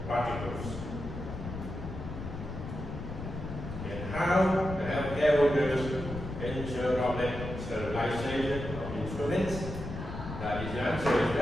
particles. And how the healthcare workers ensure droplet sterilization of instruments? That is, the answer is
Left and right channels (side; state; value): left; noise; rumble, 8 dB below the sound